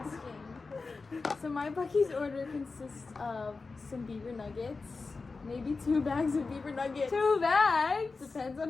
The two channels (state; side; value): quieter; right; 4.1 dB